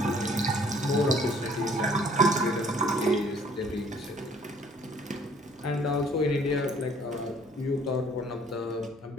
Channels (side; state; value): both; normal; correlation 0.58